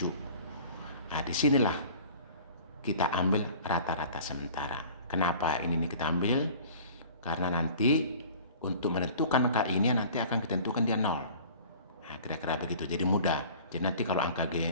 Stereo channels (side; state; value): both; inverted; correlation -0.45